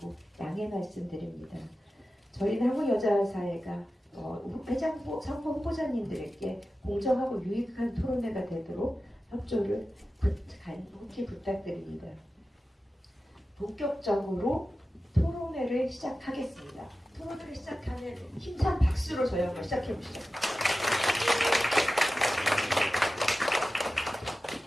양해 말씀드립니다. 저희는 한국여자사회가 회장부 선거 후보자님들에게 공정하고 유익한 토론회가 되도록 협조를 간곡히 부탁드립니다. 본격적으로 토론회를 시작하겠습니다. 토론회를 시작하는 힘찬 박수로 저희 한번 시작해 보시죠.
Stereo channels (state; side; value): normal; both; correlation 0.94